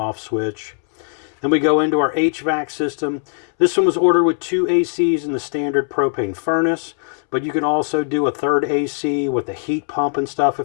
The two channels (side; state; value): right; silent; 66 dB below the other